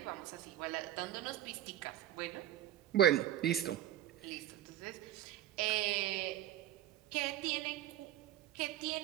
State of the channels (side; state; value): left; quieter; 12.1 dB